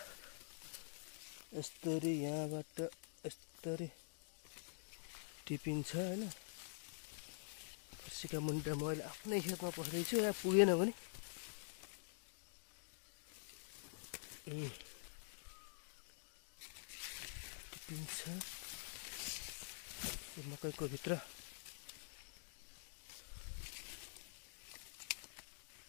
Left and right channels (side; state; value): right; silent; digital silence